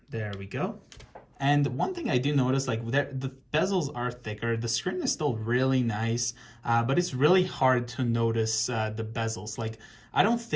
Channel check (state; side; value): identical; both; correlation 1.00